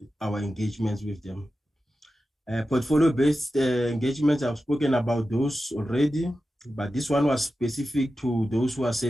our engagements with them. Portfolio-based engagements, I've spoken about those already, but this one was specific to those who are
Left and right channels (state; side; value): normal; both; correlation 0.93